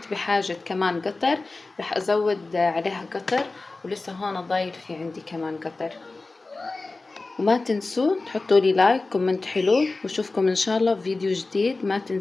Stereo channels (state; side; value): quieter; right; 3.5 dB